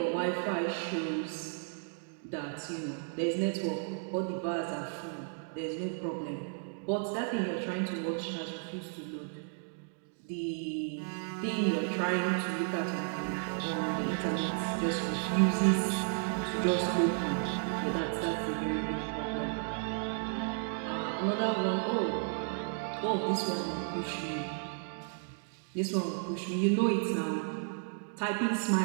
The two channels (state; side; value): silent; left; 55 dB below the other